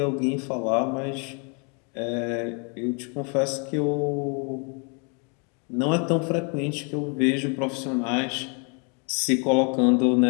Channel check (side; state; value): right; quieter; 36.4 dB